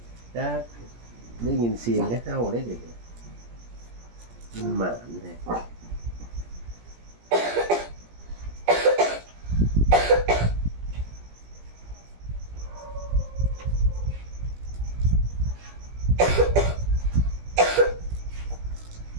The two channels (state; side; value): late; left; 17 ms